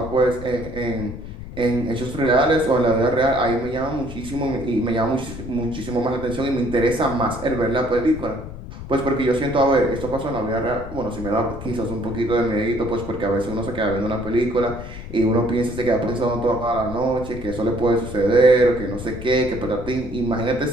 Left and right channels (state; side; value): noise; left; rumble, 11 dB below the sound